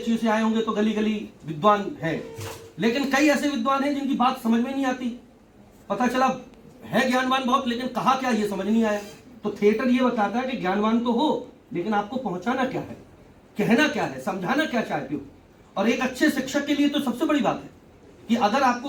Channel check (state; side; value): identical; both; correlation 1.00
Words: से आए होंगे तो गली गली विद्वान है, लेकिन कई ऐसे विद्वान हैं जिनकी बात समझ में नहीं आती। पता चला है ज्ञानवान बहुत, लेकिन कहा क्या ये समझ नहीं आया। तो थिएटर ये बताता है कि ज्ञानवान तो हो, लेकिन आपको पहुंचाना क्या है, कहना क्या है, समझाना क्या चाहते हो। और एक अच्छे शिक्षक के लिए तो सबसे बड़ी बात है कि अगर